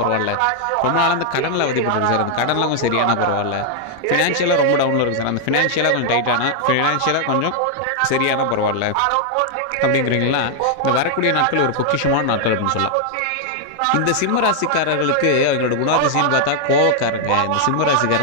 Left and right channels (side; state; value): both; different; correlation 0.00